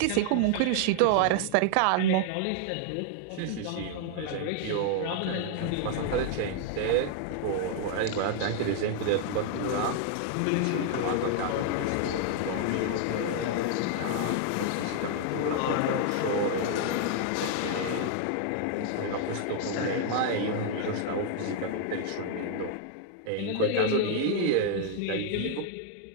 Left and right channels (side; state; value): both; different; correlation 0.00